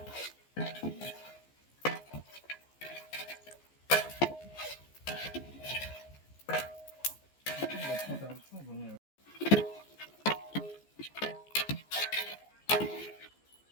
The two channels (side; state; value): right; late; 14 ms